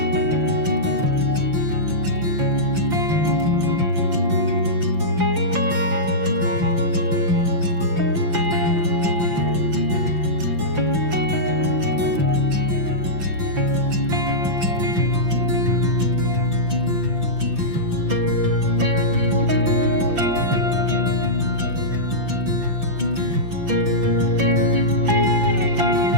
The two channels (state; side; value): late; left; 5.9 ms